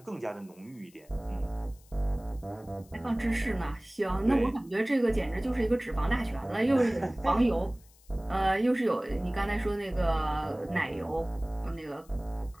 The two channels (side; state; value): left; noise; hiss, 28 dB below the sound